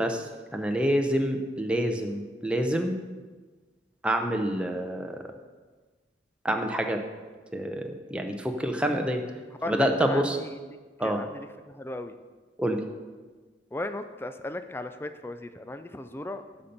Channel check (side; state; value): both; normal; correlation 0.76